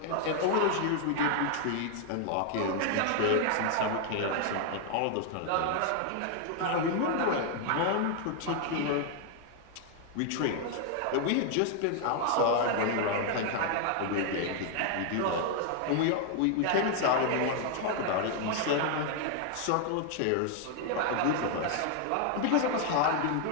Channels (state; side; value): different; both; correlation 0.00